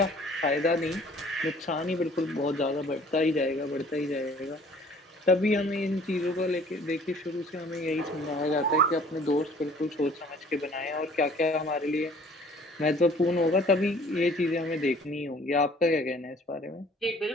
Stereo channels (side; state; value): both; normal; correlation 0.53